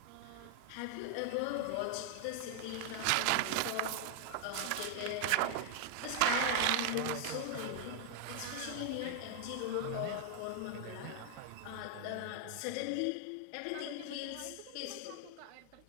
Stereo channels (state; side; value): different; both; correlation 0.00